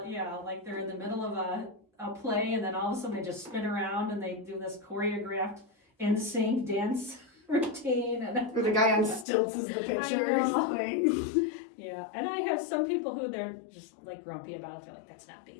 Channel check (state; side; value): drops out; right; at 9.2 s